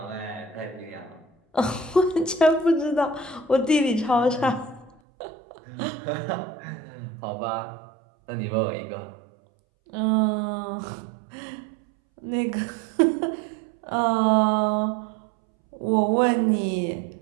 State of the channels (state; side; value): drops out; left; at 4.9 s